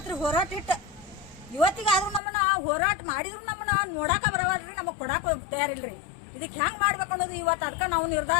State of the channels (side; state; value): right; drops out; at 2.2 s